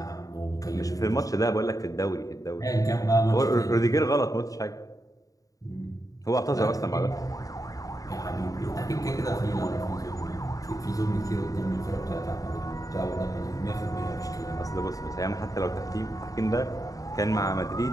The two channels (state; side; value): late; right; 0.17 ms